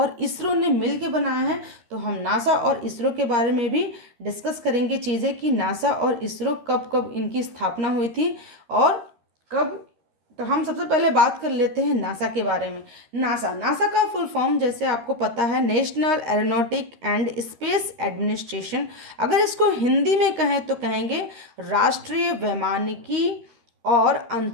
इसरो ने मिल के बनाया है। तो हम नासा और इसरो के बारे में भी डिस्कस करेंगे चीज़ें कि नासा और इसरो कब कब इनकी स्थापना हुई थी और कब। तो हम सबसे पहले बात कर लेते हैं नासा के बारे में। नासा नासा का फुल फॉर्म जैसे आपको पता है national aeronautic and space administration. अगर इसको हिंदी में कहें तो कहेंगे राष्ट्रीय वैमानिकी और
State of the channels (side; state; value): left; late; 13 ms